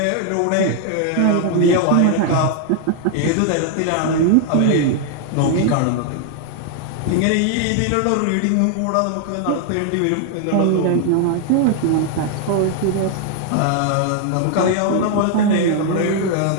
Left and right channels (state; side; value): different; both; correlation 0.00